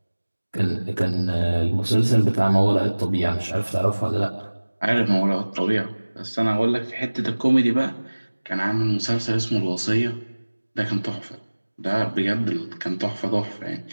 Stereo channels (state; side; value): inverted; both; correlation -1.00